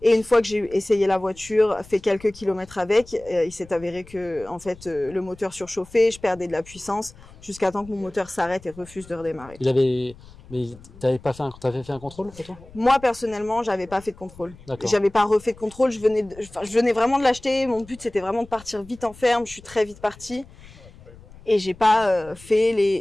Et une fois que j'ai essayé la voiture, fait quelques kilomètres avec, il s'est avéré que en fait le moteur surchauffait, je perdais de la puissance jusqu'à temps que mon moteur s'arrête et refuse de redémarrer. Mais t'avais fait un contrôle pour toi? Moi personnellement, j'avais pas fait de contrôle. D'accord. J'avais pas refait de contrôle. Je venais vraiment de l'acheter. Mon but c'était vraiment de partir vite en ferme. Je suis très vite partie et j'ai pas fait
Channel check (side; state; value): left; noise; rumble, 21 dB below the sound